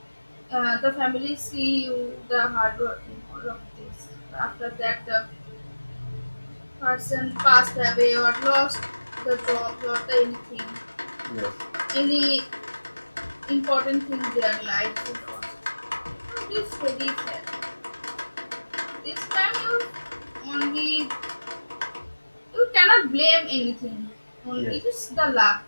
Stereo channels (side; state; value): both; inverted; correlation -1.00